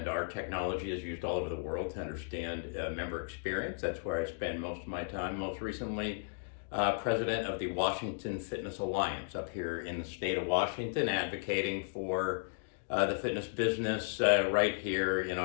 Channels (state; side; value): silent; right; digital silence